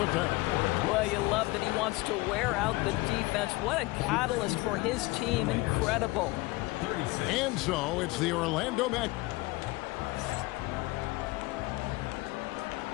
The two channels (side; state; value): right; quieter; 21.5 dB